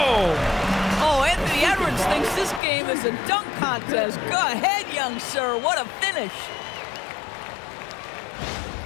Oh, Anthony Edwards thinks this game is a dunk contest. Go ahead, young sir. What a finish.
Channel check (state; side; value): drops out; right; at 2.6 s